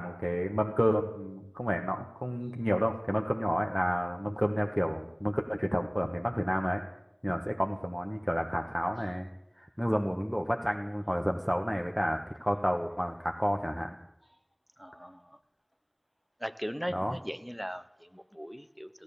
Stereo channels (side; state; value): both; identical; correlation 1.00